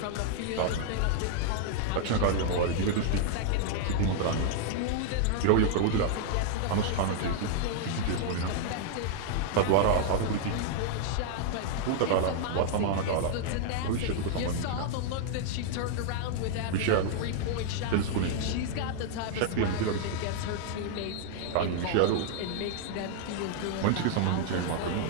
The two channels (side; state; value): both; different; correlation -0.01